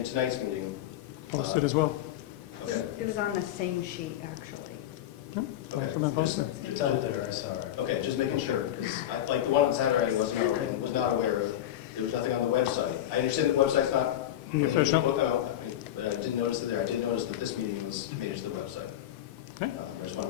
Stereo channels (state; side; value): quieter; right; 12.1 dB